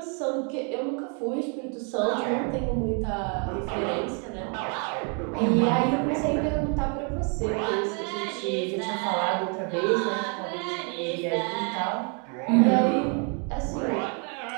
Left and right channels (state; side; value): quieter; left; 38.1 dB